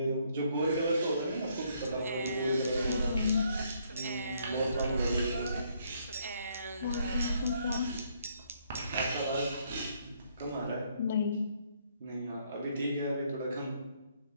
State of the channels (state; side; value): inverted; both; correlation -0.69